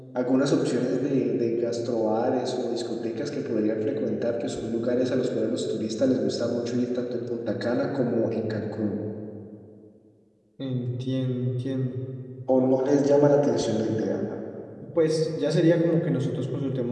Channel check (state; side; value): identical; both; correlation 1.00